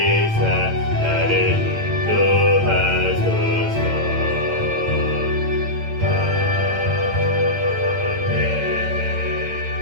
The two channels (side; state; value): left; late; 8.9 ms